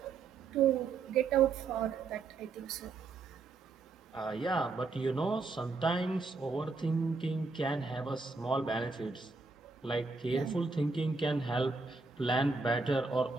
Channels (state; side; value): quieter; left; 4.1 dB